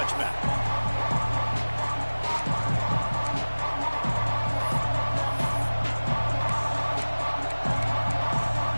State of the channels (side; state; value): both; inverted; correlation -1.00